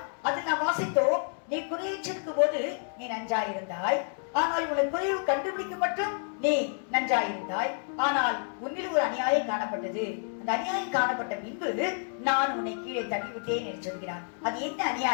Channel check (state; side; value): silent; right; 57 dB below the other